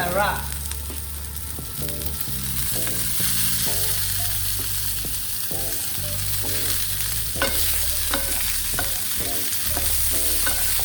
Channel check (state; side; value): identical; both; correlation 1.00